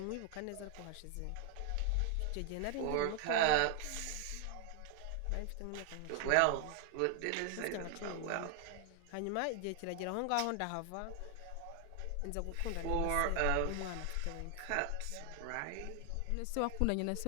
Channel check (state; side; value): different; both; correlation 0.00